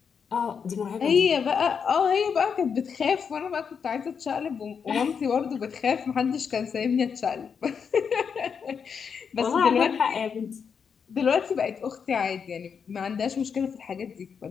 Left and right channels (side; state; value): right; quieter; 6.5 dB